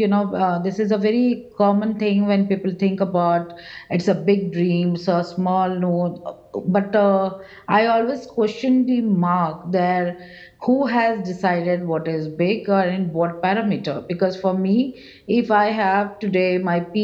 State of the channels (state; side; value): identical; both; correlation 1.00